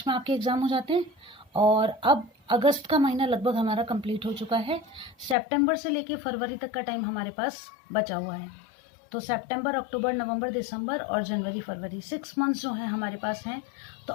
में आपके एग्ज़ाम हो जाते हैं और अब अगस्त का महीना लगभग हमारा कंप्लीट हो चुका है। सितंबर से लेके फरवरी तक का टाइम हमारे पास बचा हुआ है। तो सितंबर, अक्टूबर, नवंबर, दिसंबर और जनवरी, फरवरी 6 मंथ्स जो हैं हमारे पास हैं। तो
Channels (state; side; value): drops out; right; at 5.4 s